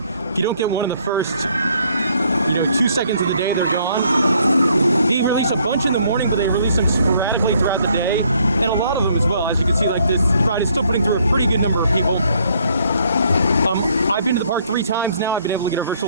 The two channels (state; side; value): inverted; both; correlation -0.66